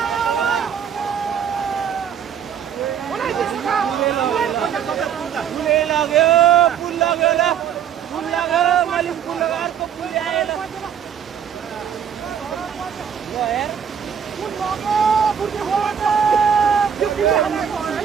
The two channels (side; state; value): left; quieter; 8.2 dB